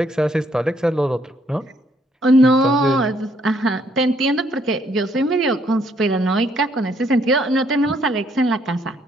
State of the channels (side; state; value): both; normal; correlation 0.69